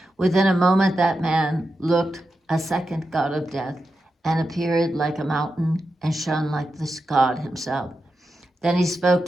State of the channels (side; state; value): both; normal; correlation 0.89